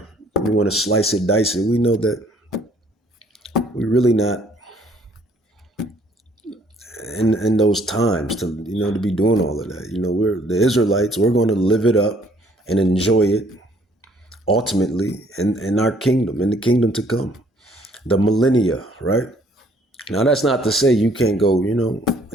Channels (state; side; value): normal; both; correlation 0.62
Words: you want to slice it, dice it. We know that we're really not in those times to be doing all of that. We're the Israelites. We're going to live it up and enjoy it ultimately in our kingdom, in the kingdom to come, the millennia, right? Now that's not to say you can't go,